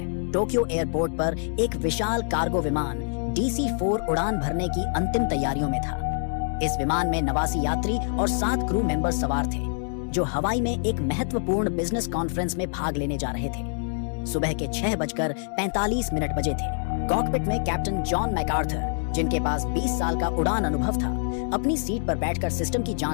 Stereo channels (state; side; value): silent; right; digital silence